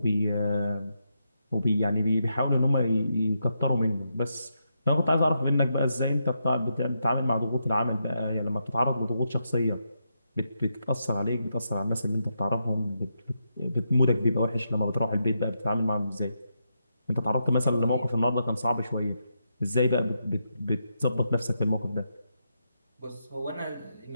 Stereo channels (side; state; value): both; inverted; correlation -0.83